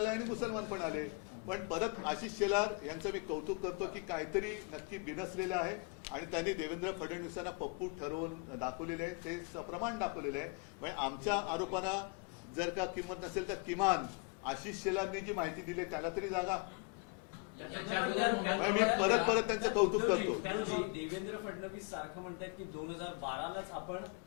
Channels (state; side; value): quieter; right; 30.0 dB